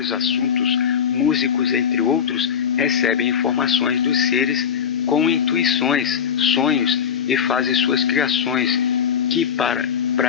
assuntos, músicos, entre outros, recebem informações dos seres com intuições, sonhos e fazem suas criações, que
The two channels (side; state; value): right; quieter; 7.7 dB